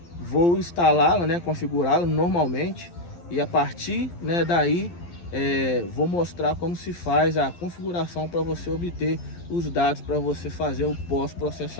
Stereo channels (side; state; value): right; late; 12 ms